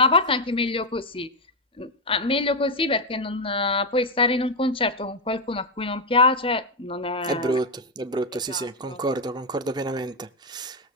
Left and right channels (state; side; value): normal; both; correlation 0.04